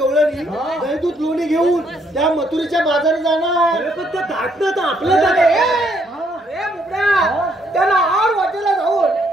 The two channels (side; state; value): both; normal; correlation 0.70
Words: गवळणी दही दूध लोणी घेऊन त्या मथुरेच्या बाजारी जाणार. अरे पण ते धाटणं तर आपलं अरे बोबड्या, त्याला आड वाटेला जाऊन